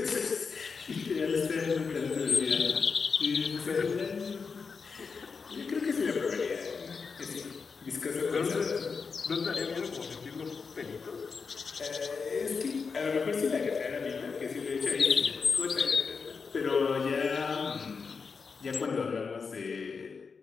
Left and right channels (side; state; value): right; quieter; 5.2 dB